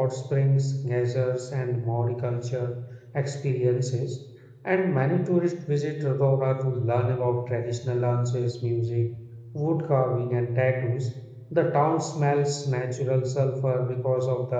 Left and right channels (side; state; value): both; identical; correlation 1.00